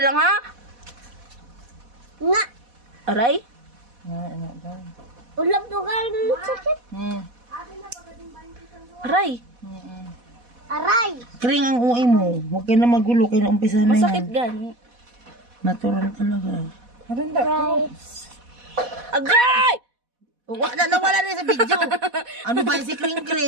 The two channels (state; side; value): late; left; 4.1 ms